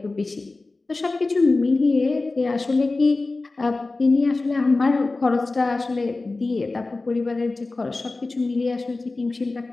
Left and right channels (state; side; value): quieter; right; 3.4 dB